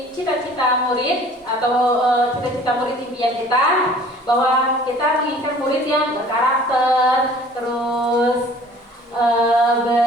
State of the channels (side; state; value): both; normal; correlation 0.50